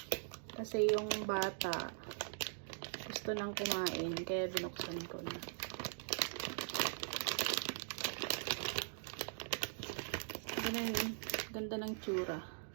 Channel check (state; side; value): silent; left; digital silence